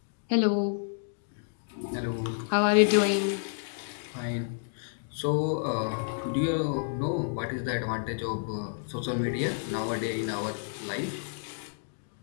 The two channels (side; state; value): right; silent; digital silence